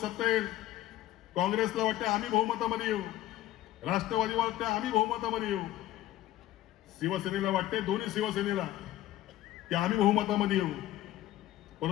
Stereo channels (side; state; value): right; quieter; 14.3 dB